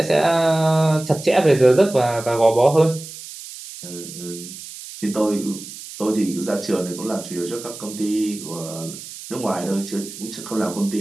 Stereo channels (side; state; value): right; noise; hiss, 13 dB below the sound